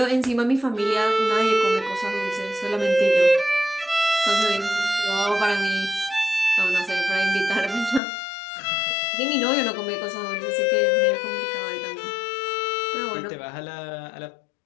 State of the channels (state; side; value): drops out; right; at 8.0 s